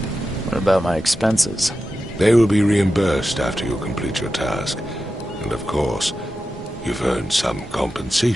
What about my expenses? They will be reimbursed after you complete your task. And of course, you've earned some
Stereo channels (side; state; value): both; normal; correlation 0.91